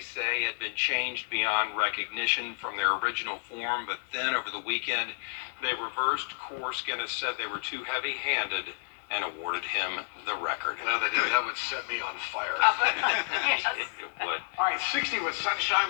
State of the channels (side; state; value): right; silent; 57 dB below the other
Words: had been changed beyond recognition from their original form, but then over the weekend they reversed course. Guinness said they were too heavy-handed and awarded him the record. Well, that would set me on fire. Yes. It would. All right, 60 with sunshine.